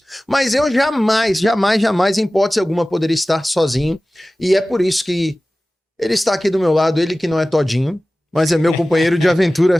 Mas eu jamais, em hipótese alguma, poderia estar sozinho, e é por isso que ele está aqui do meu lado, ele que não é todinho, mas é meu companheiro de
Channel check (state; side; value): normal; both; correlation 0.97